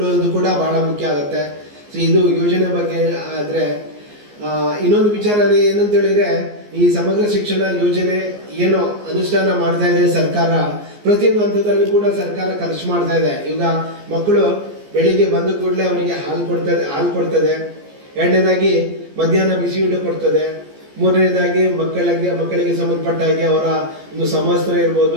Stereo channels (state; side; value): late; left; 14 ms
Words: ಕೂಡ ಬಹಳ ಮುಖ್ಯ ಆಗುತ್ತೆ. ಸೊ ಇದು ಯೋಜನೆ ಬಗ್ಗೆ ಆದರೆ ಇನ್ನೊಂದು ವಿಚಾರ ಏನಂತ ಹೇಳಿದ್ರೆ, ಈ ಸಮಗ್ರ ಶಿಕ್ಷಣ ಯೋಜನೆ ಏನೋ ಅನುಷ್ಠಾನ ಮಾಡ್ತಾ ಇದೆ ಸರ್ಕಾರ. ಪ್ರತಿಯೊಂದು ಹಂತದಲ್ಲಿ ಕೂಡ ಸರ್ಕಾರ ಖರ್ಚು ಮಾಡ್ತಾ ಇದೆ. ಈಗ ಮಕ್ಕಳು ಬೆಳಿಗ್ಗೆ ಬಂದ ಕೂಡಲೇ ಅವರಿಗೆ ಹಾಲು ಕೊಡ್ತದೆ. ಎರಡನೇದಾಗಿ ಮಧ್ಯಾಹ್ನ ಬಿಸಿ ಊಟ ಕೊಡ್ತದೆ. ಮೂರನೇದಾಗಿ ಮಕ್ಕಳಿಗೆ ಸಂಬಂಧಪಟ್ಟ ಹಾಗೆ ಅವರ ಒಂದು ಸಮವಸ್ತ್ರ